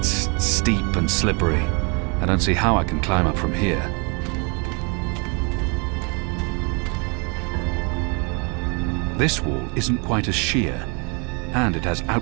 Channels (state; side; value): quieter; left; 33.7 dB